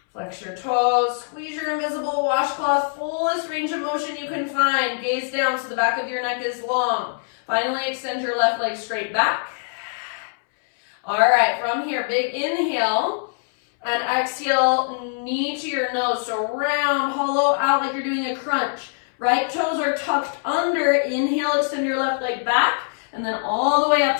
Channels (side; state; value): right; silent; 64 dB below the other